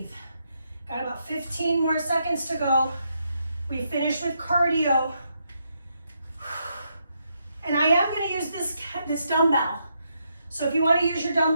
Got about 15 more seconds to go. We finish with cardio. And I am going to use this dumbbell. So if you want to use your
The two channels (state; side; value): inverted; both; correlation -0.79